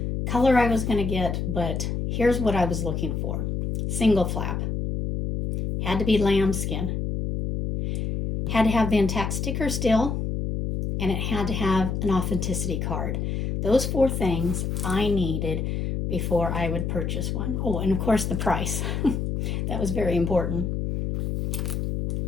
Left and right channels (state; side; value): noise; left; hum, 1 dB below the sound